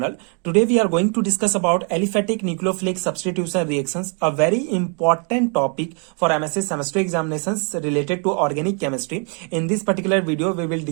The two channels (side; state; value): left; quieter; 38.9 dB